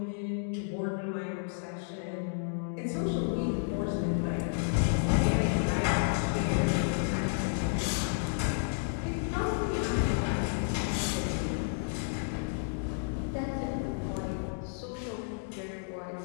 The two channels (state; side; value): silent; right; digital silence